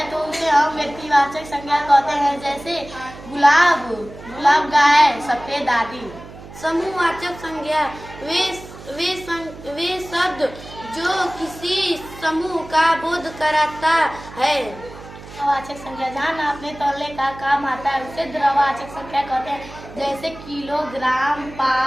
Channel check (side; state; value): right; noise; hum, 16 dB below the sound